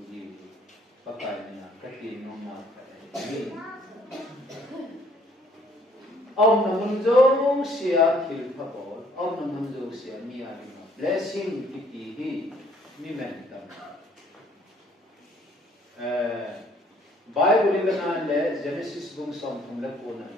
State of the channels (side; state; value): both; normal; correlation 0.62